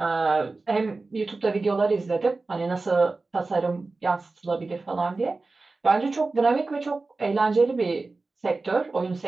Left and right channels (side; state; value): left; quieter; 3.6 dB